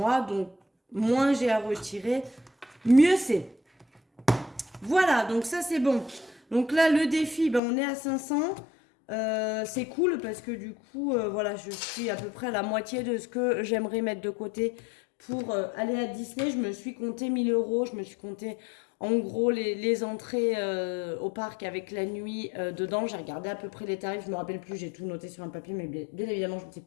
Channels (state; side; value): drops out; right; at 7.6 s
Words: Donc moins j'ai à retirer, mieux c'est. Voilà, donc ça c'est bon. Donc là le défi, on est à 500. C'est cool parce que du coup, voilà, je suis à peu près à la moitié de ce que j'aimerais mettre de côté pour aller à Disney. Je me suis compté 1000 euros. Je me suis compté en gros les entrées au parc avec la nuit dedans. J'ai regardé à peu près les tarifs. Je me rappelle plus. J'ai tout noté sur un papier, mais bien évidemment, je ne sais